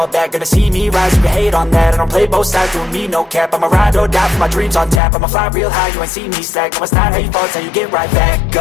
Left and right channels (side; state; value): right; drops out; at 5.0 s